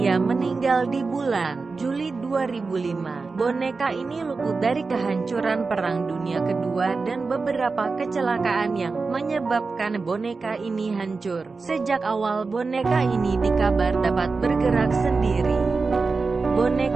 meninggal di bulan Juli 2005. Boneka ini luput dari kehancuran Perang Dunia Kedua dan beberapa kecelakaan yang menyebabkan boneka ini hancur. Sejak awal boneka ini dikabar dapat bergerak sendiri.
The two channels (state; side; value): quieter; left; 4.2 dB